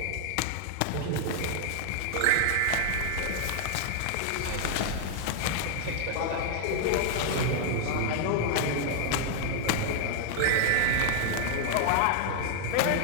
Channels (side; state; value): both; different; correlation 0.00